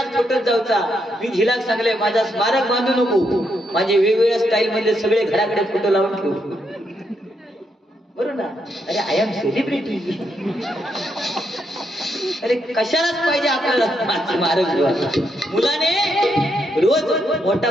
फोटोत जाऊचा. मी झिलाक सांगले माझा स्मारक बांधू नको, माझे वेगवेगळ्या स्टाईल मध्ये सगळे घराकडे फोटो लावून ठेवू, बरोबर ना. अरे आय एम सेलिब्रिटी, अरे कशालाच पाहिजे आपल्याला स्मारक. मुलाने रोज मोठा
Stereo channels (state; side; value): normal; both; correlation 0.79